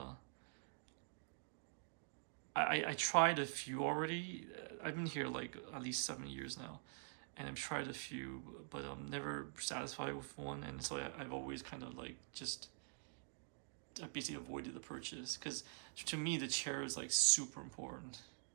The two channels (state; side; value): silent; left; digital silence